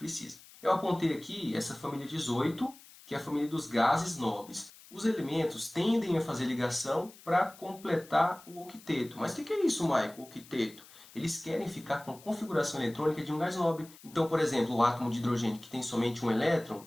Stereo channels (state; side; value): noise; left; hiss, 21 dB below the sound